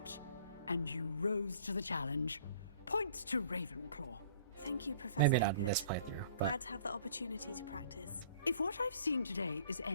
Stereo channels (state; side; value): inverted; both; correlation -0.52